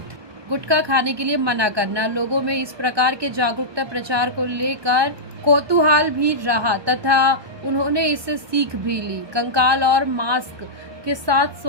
गुटखा खाने के लिए मना करना। लोगों में इस प्रकार के जागरूकता प्रचार को लेकर कौतूहल भी रहा तथा उन्होंने इससे सीख भी ली। कंकाल और मास्क के साथ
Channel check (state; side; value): late; left; 1.2 ms